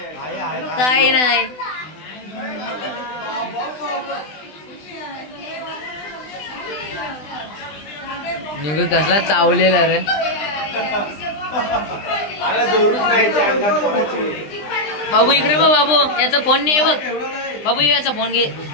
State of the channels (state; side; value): late; right; 20 ms